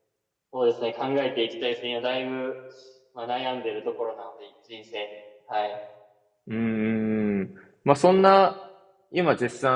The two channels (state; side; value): identical; both; correlation 1.00